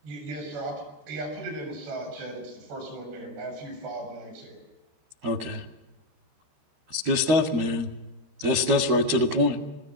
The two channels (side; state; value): left; late; 13 ms